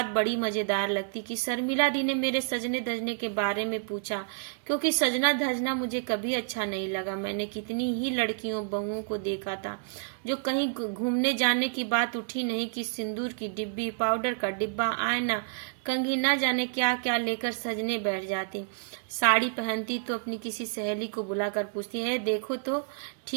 बड़ी मजेदार लगती कि शर्मिला दी ने मेरे सजने धजने के बारे में पूछा, क्योंकि सजना धजना मुझे कभी अच्छा नहीं लगा। मैंने कितनी ही लड़कियों बहुओं को देखा था जो कहीं घूमने जाने की बात उठी नहीं कि सिंदूर की डिब्बी, पाउडर का डिब्बा, आईना, कंघी, न जाने क्या क्या लेकर सजने बैठ जाती। साड़ी पहनती तो अपनी किसी सहेली को बुलाकर पूछती है, देखो तो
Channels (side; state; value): left; silent; digital silence